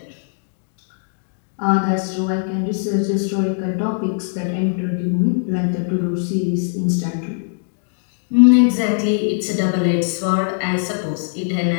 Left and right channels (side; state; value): right; silent; digital silence